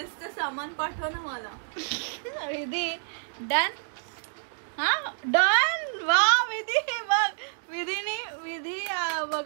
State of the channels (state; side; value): silent; left; digital silence